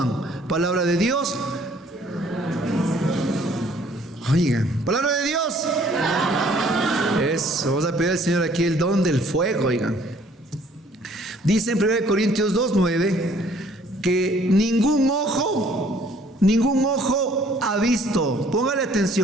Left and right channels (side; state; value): both; normal; correlation 0.59